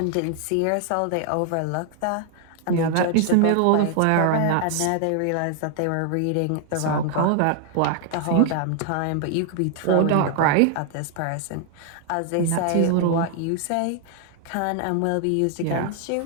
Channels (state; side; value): different; both; correlation 0.00